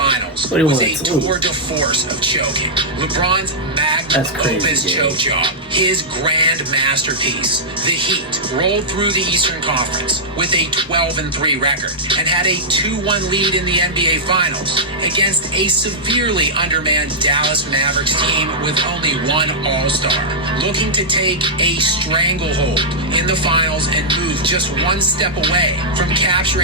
What do you was want a to do? tour de force of choking. LeBron's magnum That's crazy, opus Jay. choke job, his grand masterpiece. The Heat rolled through the Eastern Conference with a 12-3 record and had a 2-1 lead in the NBA Finals against a severely undermanned Dallas Mavericks team with only one All-Star, looking to take a stranglehold in the finals and move just one step away from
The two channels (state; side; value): normal; both; correlation -0.11